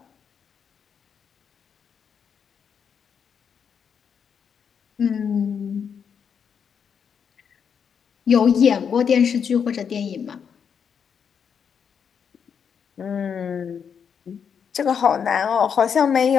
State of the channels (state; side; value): quieter; right; 7.1 dB